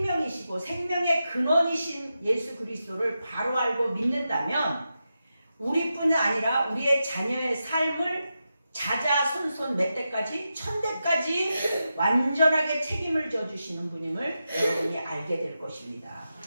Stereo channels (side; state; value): both; inverted; correlation -0.89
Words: 생명의 근원이신 예수 그리스도를 바로 알고 믿는다면 우리뿐 아니라 우리의 자녀의 삶을 자자손손 몇 대까지 천대까지 완전하게 책임을 져주시는 분임을 여러분이 알게 될 것입니다.